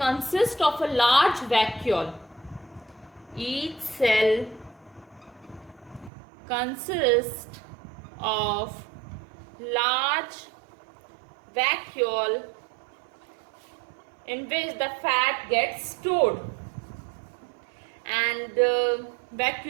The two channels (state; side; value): drops out; left; at 6.1 s